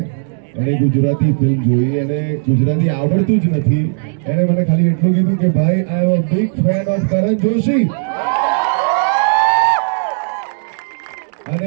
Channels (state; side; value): silent; left; digital silence